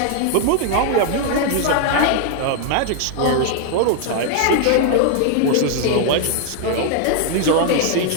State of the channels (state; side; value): different; both; correlation 0.00